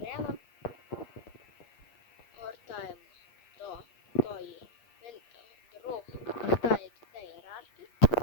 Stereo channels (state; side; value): late; right; 8.4 ms